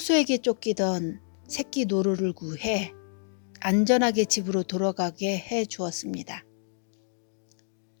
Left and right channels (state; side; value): silent; right; digital silence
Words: 쫓기던 새끼 노루를 구해 안전하게 집으로 돌아가게 해 주었습니다.